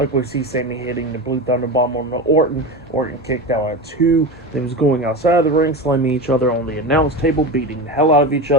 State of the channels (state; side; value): normal; both; correlation 0.24